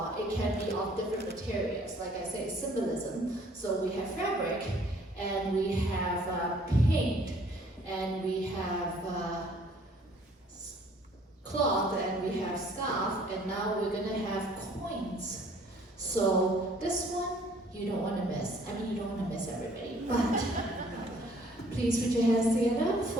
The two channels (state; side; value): normal; both; correlation 0.58